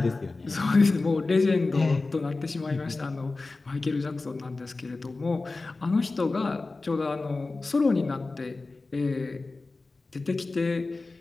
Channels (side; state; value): right; quieter; 3.5 dB